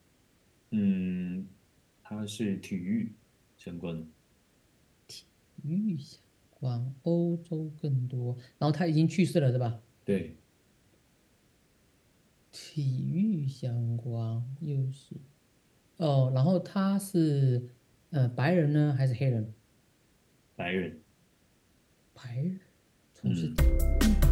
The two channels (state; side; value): identical; both; correlation 1.00